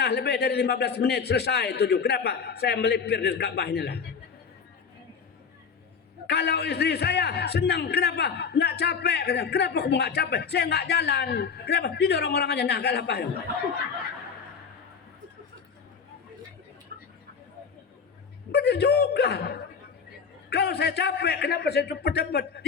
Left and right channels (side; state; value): right; quieter; 6.0 dB